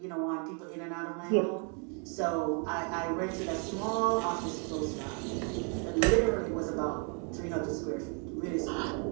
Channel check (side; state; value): left; quieter; 38.9 dB